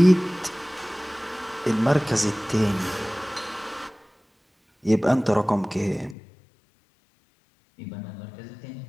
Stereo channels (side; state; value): right; drops out; at 6.2 s